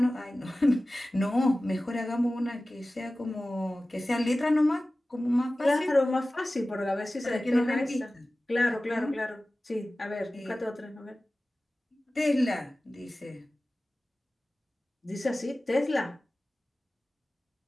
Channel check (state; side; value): normal; both; correlation 0.96